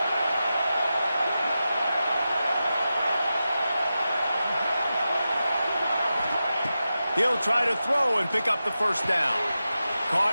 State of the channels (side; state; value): both; inverted; correlation -0.92